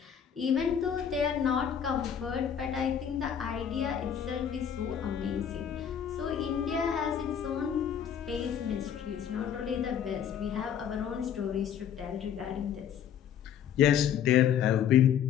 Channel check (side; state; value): right; quieter; 8.7 dB